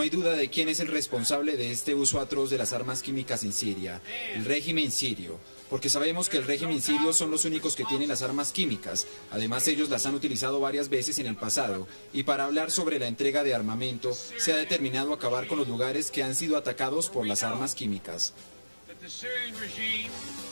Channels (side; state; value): both; inverted; correlation -1.00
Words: hay duda de quién es el responsable de este uso atroz de las armas químicas en Siria, el régimen sirio. Porque sabemos que el régimen sirio son los únicos que tienen las armas químicas. Además, ellos las han utilizado varias veces en el pasado. Y para hablar sobre la entrega de armamento, se ha determinado acabar con los lugares que han sido atacados por las armas químicas.